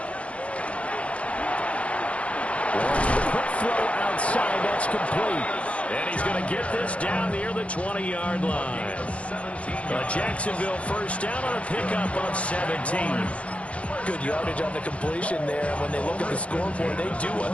Quick throw outside. That's complete. And he's going to get this down near the 20-yard line. Jacksonville first down on a pickup of 17. Good yardage on the completion there. When they look at the scoreboard, they do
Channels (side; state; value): right; late; 0.063 ms